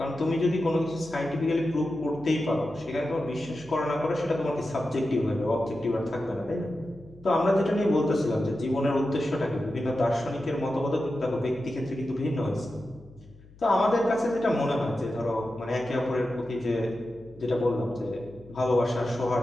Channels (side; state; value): left; noise; hum, 23 dB below the sound